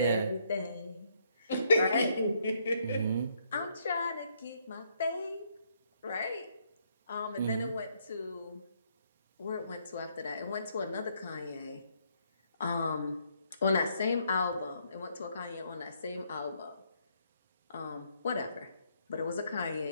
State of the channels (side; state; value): both; inverted; correlation -0.72